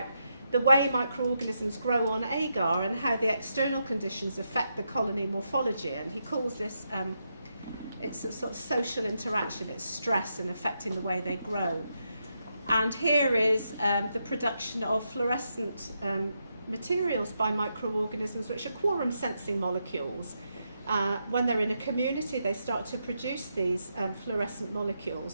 the way microorganisms grow on agar and how the external conditions affect the colony morphology. And he calls this, it's a sort of social interaction, it's stress and affecting the way they grow. And here is the production of fluorescent materials by microorganisms, which are quorum sensing molecules. When they're in a community, they start to produce these fluorescent molecules.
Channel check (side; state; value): both; inverted; correlation -0.83